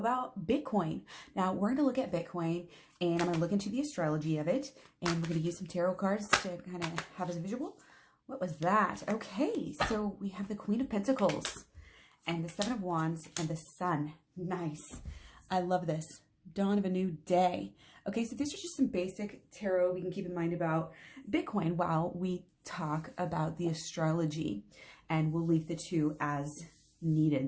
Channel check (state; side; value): identical; both; correlation 1.00